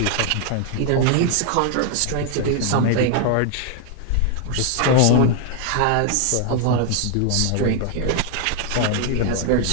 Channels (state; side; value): different; both; correlation 0.00